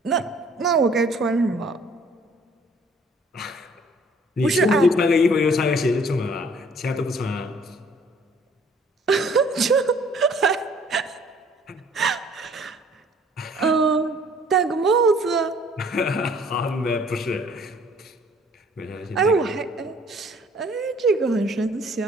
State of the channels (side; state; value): both; normal; correlation 0.57